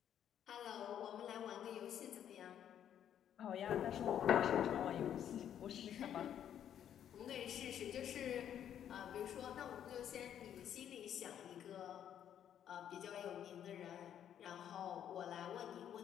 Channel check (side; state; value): right; quieter; 9.8 dB